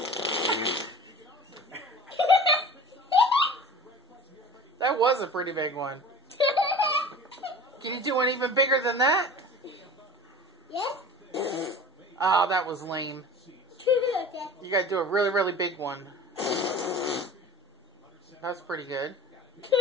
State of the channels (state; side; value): normal; both; correlation 0.39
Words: That was a pretty big one. Can you do one even bigger than that? Yes. Oh, that was lame. Okay. You gotta do a really, really big one. That's pretty good.